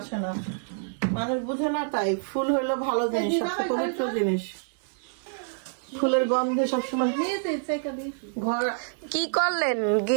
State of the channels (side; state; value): left; silent; digital silence